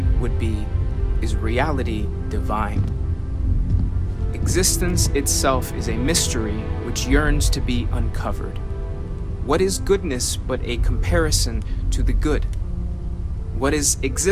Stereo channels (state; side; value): identical; both; correlation 1.00